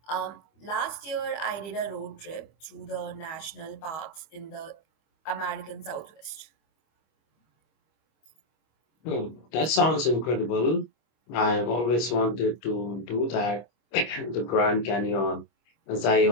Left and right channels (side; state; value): right; late; 25 ms